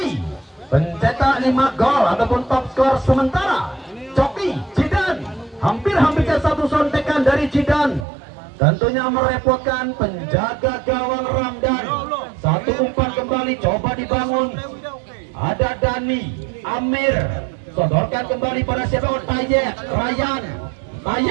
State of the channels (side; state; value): left; drops out; at 8.1 s